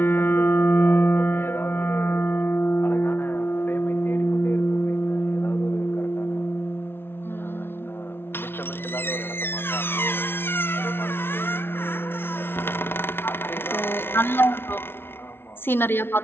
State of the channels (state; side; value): late; right; 0.11 ms